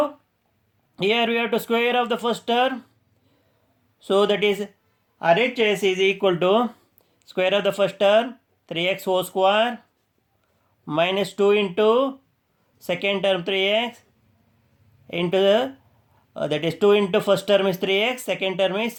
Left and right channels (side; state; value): both; identical; correlation 1.00